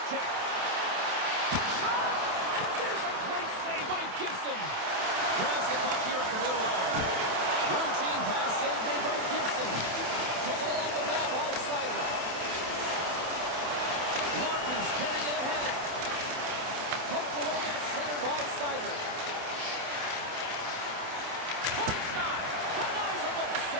check. Shot! And there's a great save by Gibson. Grabs the puck here at the blue line. Routine pass save made by Gibson. Taken along the wall by Sider. Larkin's carrying it ahead. Poked away at center by Sider.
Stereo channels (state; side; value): late; left; 27 ms